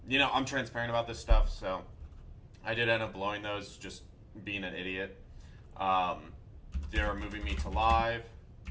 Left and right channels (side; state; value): both; identical; correlation 1.00